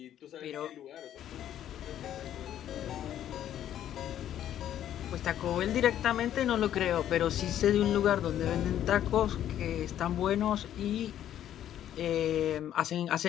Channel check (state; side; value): quieter; right; 11.1 dB